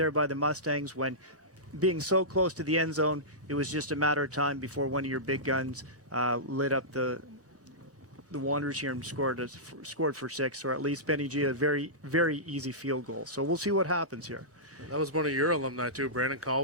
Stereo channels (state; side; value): late; left; 1.0 ms